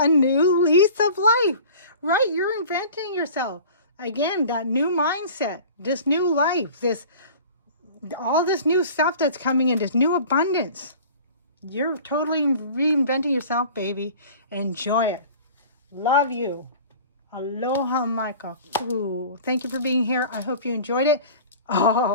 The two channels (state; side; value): inverted; both; correlation -0.42